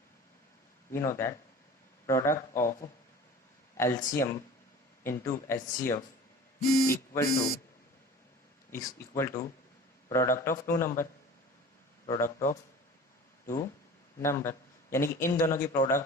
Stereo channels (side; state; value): both; normal; correlation 0.41